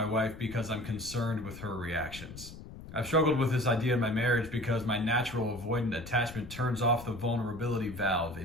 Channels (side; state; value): left; noise; rumble, 14 dB below the sound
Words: wife because I'm concerned with her reactions. I've struggled with this idea in my marriage because my natural avoidant attachment turns off the vulnerability valve